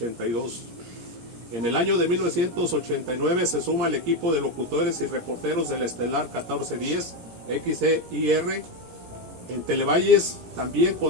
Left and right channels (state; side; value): late; left; 17 ms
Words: En el año de 1989 se suma al equipo de locutores y reporteros del Estelar 1410 XEIR. En Televalles también